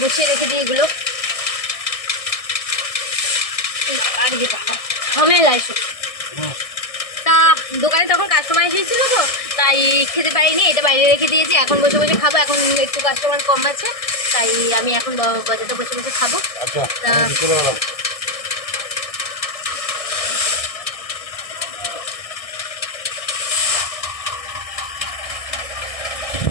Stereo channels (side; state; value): right; late; 1.6 ms